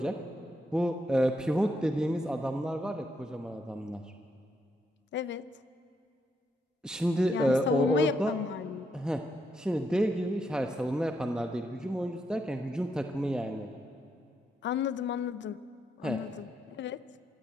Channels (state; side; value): normal; both; correlation 0.78